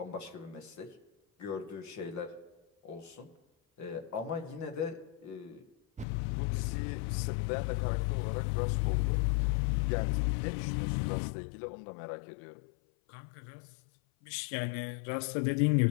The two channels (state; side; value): drops out; right; at 6.1 s